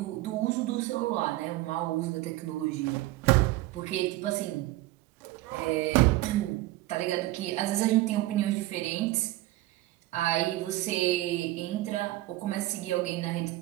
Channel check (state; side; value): quieter; left; 17.3 dB